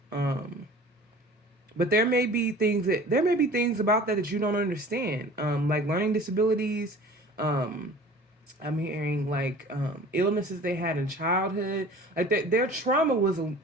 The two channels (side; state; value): both; normal; correlation 0.44